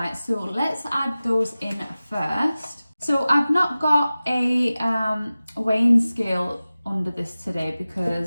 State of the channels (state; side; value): inverted; both; correlation -0.96